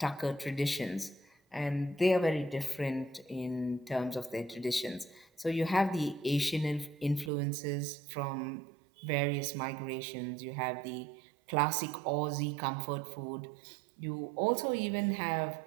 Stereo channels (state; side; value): drops out; left; at 7.3 s